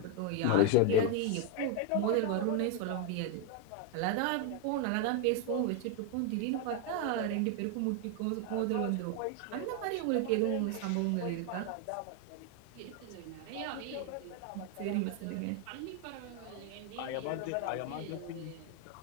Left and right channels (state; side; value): different; both; correlation 0.01